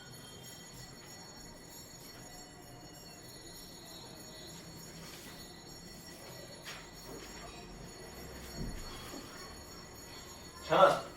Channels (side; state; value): both; identical; correlation 1.00